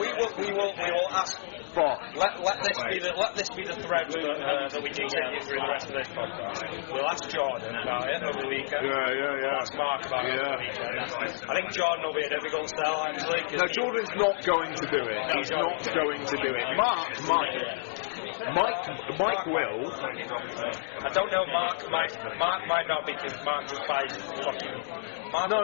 will ask. Let this be the thread that we continue through the rest of this podcast. We'll ask Jordan about it over the weekend. We'll ask Mark about it over the weekend. I think Jordan will be a difficult sell, actually. No, Jordan's not going to do it. He's not going to do it. Mike will. I don't know. Mark might not, because Mark just buys fucking. No,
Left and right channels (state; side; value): silent; right; digital silence